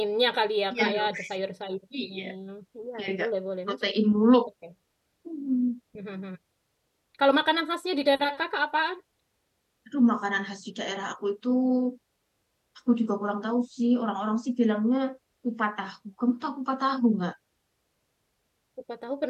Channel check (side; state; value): both; identical; correlation 1.00